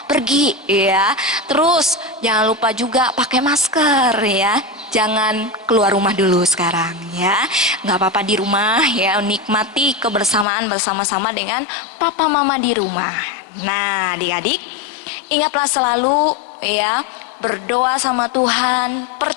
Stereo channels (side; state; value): right; drops out; at 10.5 s